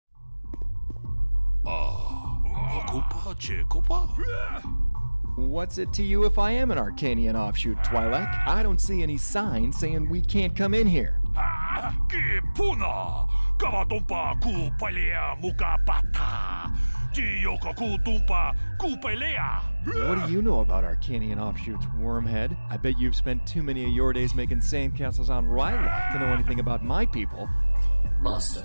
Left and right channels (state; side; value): inverted; both; correlation -1.00